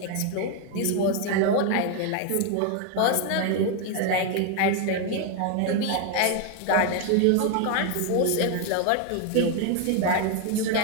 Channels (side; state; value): both; different; correlation 0.01